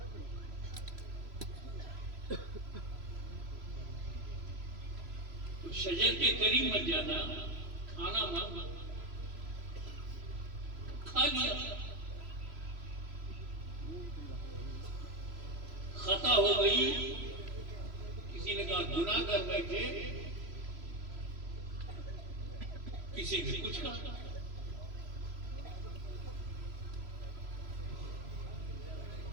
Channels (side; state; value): left; late; 3.0 ms